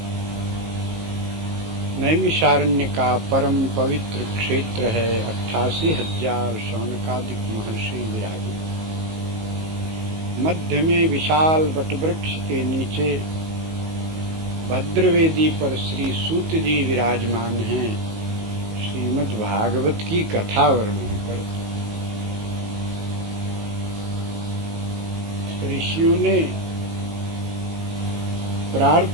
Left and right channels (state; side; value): late; left; 19 ms